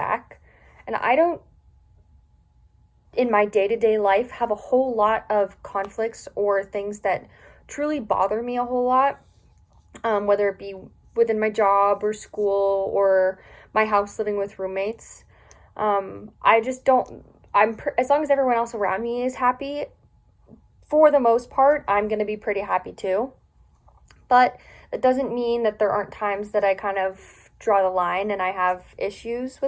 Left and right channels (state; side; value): identical; both; correlation 1.00